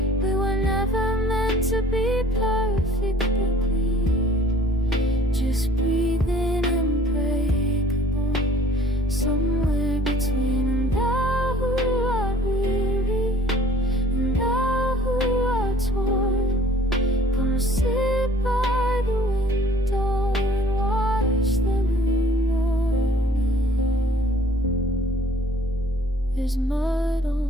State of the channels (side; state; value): both; normal; correlation 0.54